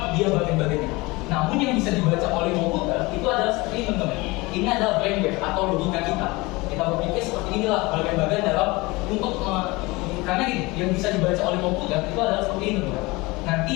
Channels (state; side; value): quieter; right; 23.1 dB